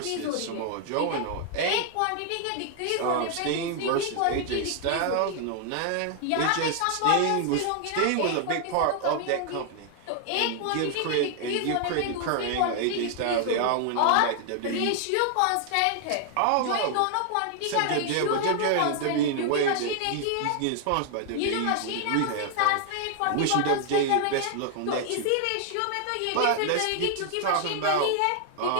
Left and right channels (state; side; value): different; both; correlation 0.00